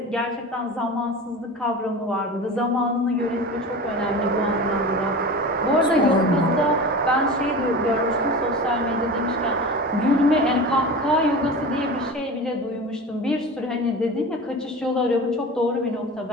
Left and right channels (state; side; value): normal; both; correlation 0.32